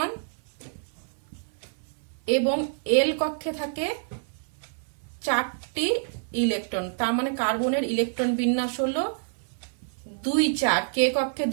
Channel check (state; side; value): silent; left; 60 dB below the other